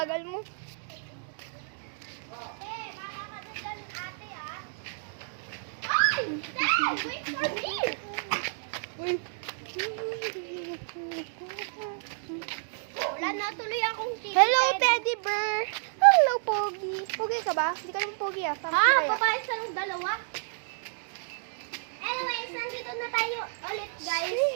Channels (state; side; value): silent; left; digital silence